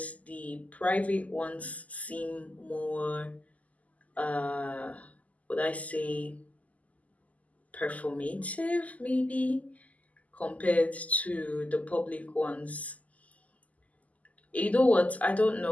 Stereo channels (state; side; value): late; right; 0.074 ms